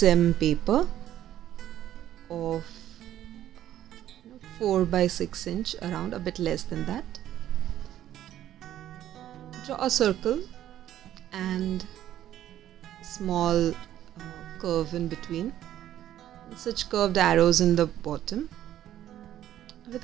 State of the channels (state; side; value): quieter; left; 12.1 dB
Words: paper of 4 by 6 inch, around a bit less than that. Draw a circle and small curve in between, and such curved arrows in the bottom with